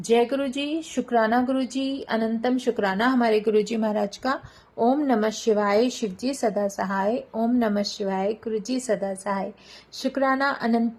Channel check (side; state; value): both; identical; correlation 1.00